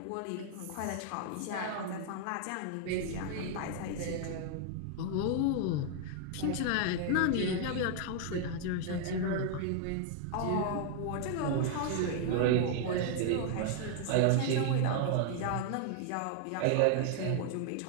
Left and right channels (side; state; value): both; different; correlation 0.00